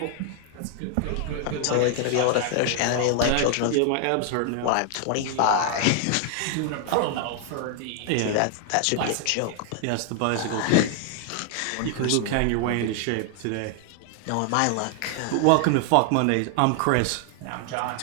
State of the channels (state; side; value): different; both; correlation 0.00